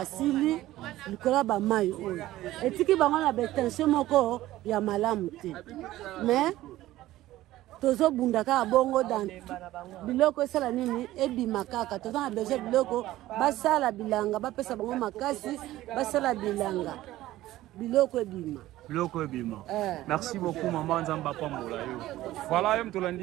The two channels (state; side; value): quieter; left; 15.6 dB